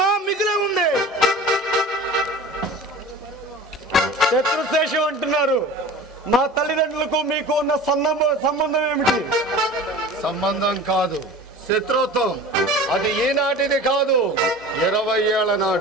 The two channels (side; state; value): both; normal; correlation 0.38